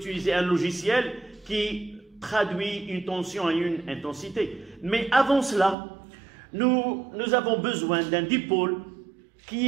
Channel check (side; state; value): left; drops out; at 5.8 s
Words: un logiciel qui traduit une tension à une intensité. Mais avant cela, nous avons besoin d'un dipôle qui